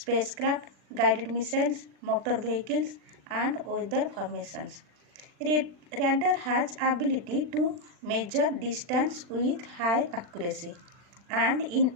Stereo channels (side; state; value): left; late; 40 ms